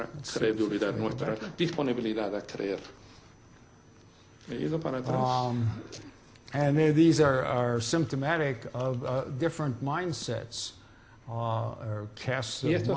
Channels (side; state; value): both; identical; correlation 1.00